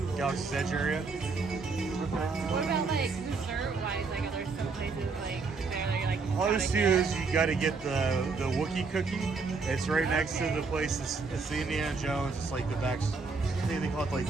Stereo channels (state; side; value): quieter; left; 4.4 dB